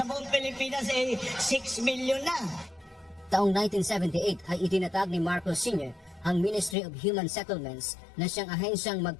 buong Pilipinas ay 6 million na. Taong 1978 ay itinatag ni Marcos Sr. ang Ministry of Human Settlements na siyang ahensyang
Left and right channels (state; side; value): drops out; right; at 6.8 s